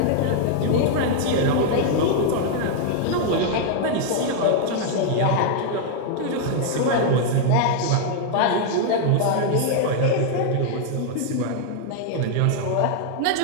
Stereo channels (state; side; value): different; both; correlation 0.00